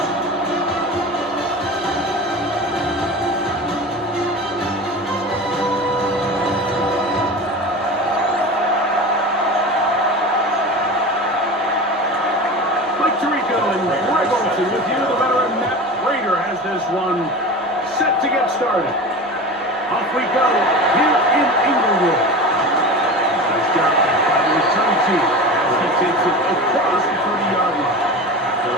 With you, the veteran Matt Prater has this one set to get started. Off we go here in Inglewood. He's got it by the return team as he takes it across the 30-yard line. The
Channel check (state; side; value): normal; both; correlation 0.31